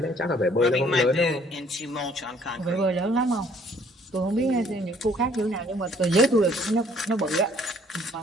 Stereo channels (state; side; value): normal; both; correlation 0.60